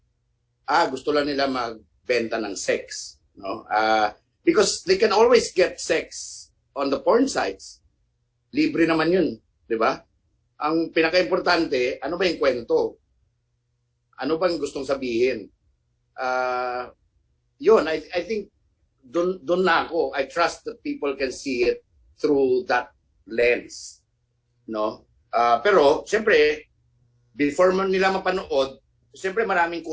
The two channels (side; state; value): both; identical; correlation 1.00